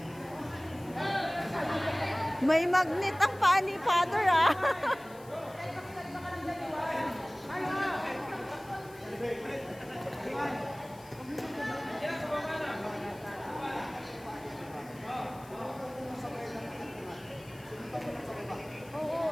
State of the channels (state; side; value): noise; left; hiss, 23 dB below the sound